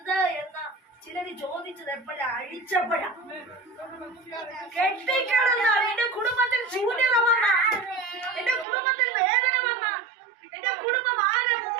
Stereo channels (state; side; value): drops out; left; at 8.7 s